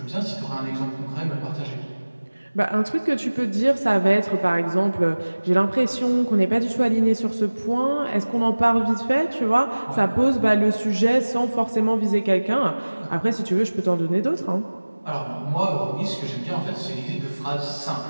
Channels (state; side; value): inverted; both; correlation -1.00